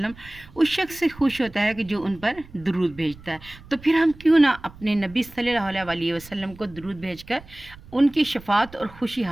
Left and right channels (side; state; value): right; noise; rumble, 20 dB below the sound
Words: उस शख्स से खुश होता है कि जो उन पर दुरूद भेजता है। तो फिर हम क्यों ना अपने नबी सल्लल्लाहु अलैहि वसल्लम को दुरूद भेजकर उनकी शफ़ाअत और खुशी